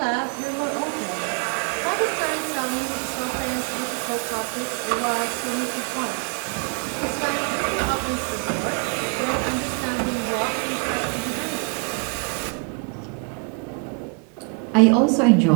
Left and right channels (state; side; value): quieter; left; 36.2 dB